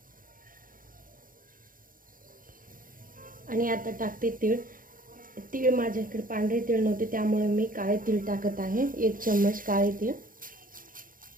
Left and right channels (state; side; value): late; left; 0.40 ms